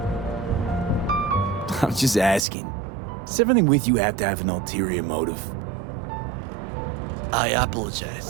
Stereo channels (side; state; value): left; drops out; at 2.4 s